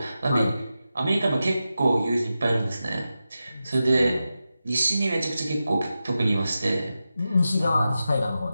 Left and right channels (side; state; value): both; inverted; correlation -0.91